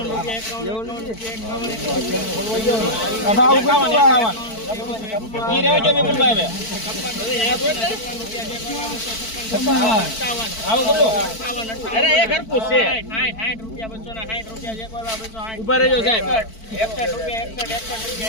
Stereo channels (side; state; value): right; late; 4.5 ms